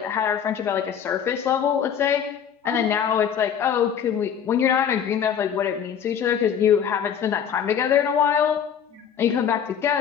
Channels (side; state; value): right; quieter; 8.3 dB